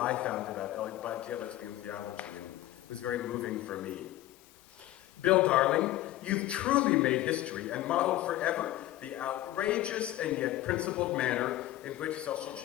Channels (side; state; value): right; quieter; 15.4 dB